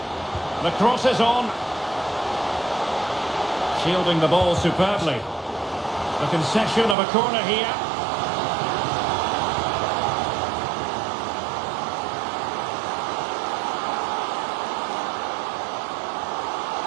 The cross is on. Shielding the ball superbly. The concession of a corner here.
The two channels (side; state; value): left; drops out; at 7.0 s